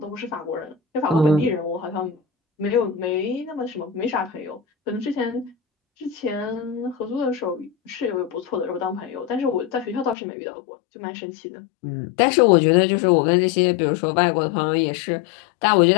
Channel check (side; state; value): right; drops out; at 10.2 s